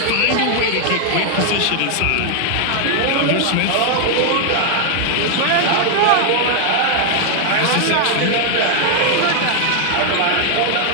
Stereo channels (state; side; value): different; both; correlation 0.00